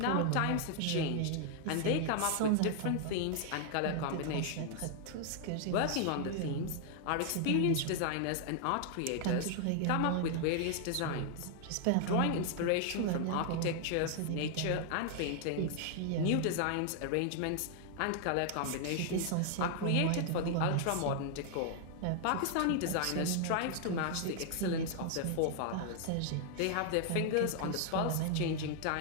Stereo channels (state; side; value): different; both; correlation 0.00